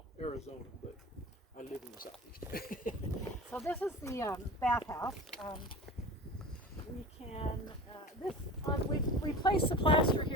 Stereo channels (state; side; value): normal; both; correlation 0.34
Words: Arizona, but I live in the southeast. So this is the bathhouse. We can, we replace the plaster